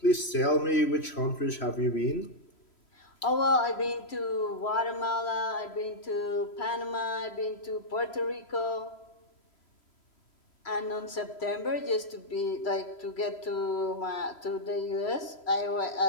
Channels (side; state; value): right; late; 3.0 ms